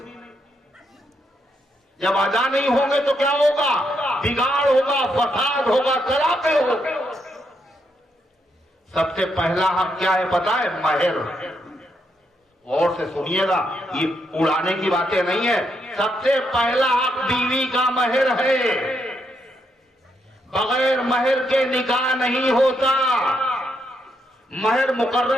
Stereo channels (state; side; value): normal; both; correlation 0.79